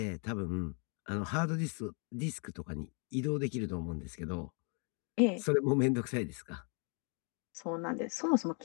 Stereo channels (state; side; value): quieter; right; 38.0 dB